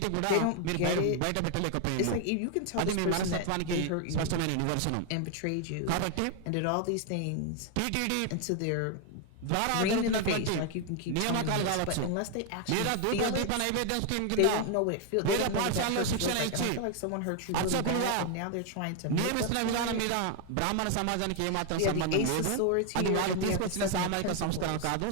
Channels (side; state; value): both; different; correlation 0.00